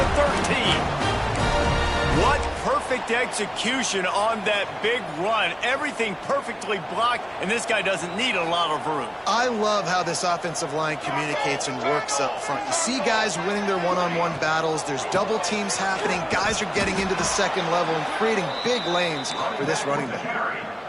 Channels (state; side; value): identical; both; correlation 1.00